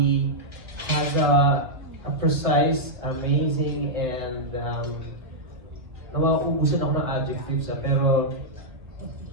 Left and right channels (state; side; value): late; left; 1.5 ms